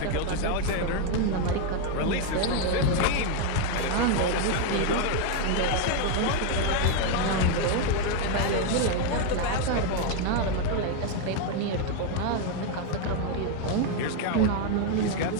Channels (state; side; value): different; both; correlation 0.01